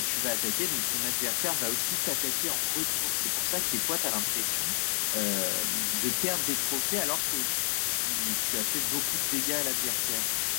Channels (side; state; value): right; silent; 58 dB below the other